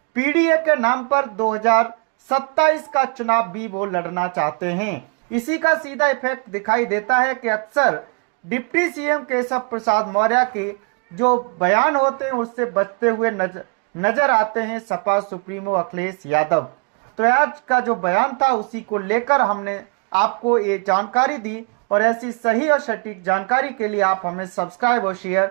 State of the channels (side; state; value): left; quieter; 35.7 dB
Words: पीडीए के नाम पर 2027 का चुनाव भी वो लड़ना चाहते हैं। इसी का सीधा इफेक्ट दिखाई देता है कि अक्सर डिप्टी सीएम केशव प्रसाद मौर्य के जो बयान होते हैं उससे बचते हुए नजर आते हैं सपा सुप्रीमो अखिलेश यादव। तो आज का जो बयान था उसी को लेकर हमने आपको ये जानकारी दी, और ऐसी सही और सटीक जानकारी के लिए आप हमें सब्सक्राइब और शेयर